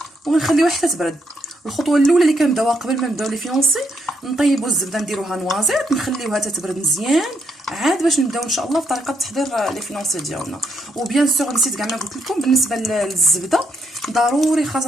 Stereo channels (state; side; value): normal; both; correlation 0.77